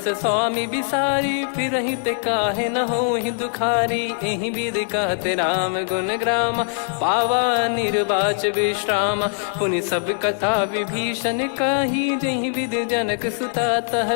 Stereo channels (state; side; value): silent; right; 60 dB below the other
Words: स्वामी बिसारी, फिरहि ते काहे न होहि दुखारी। एहि विधि कहते राम गुण ग्राम, पावा निर्वाच विश्राम। पुनि सब कथा विभीषण काही, जहि विधि जनक सुता